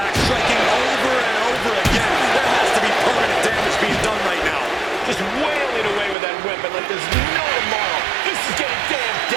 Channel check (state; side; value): drops out; left; at 6.2 s